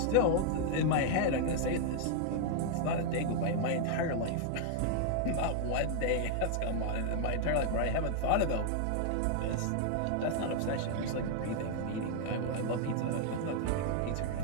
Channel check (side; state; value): both; different; correlation 0.00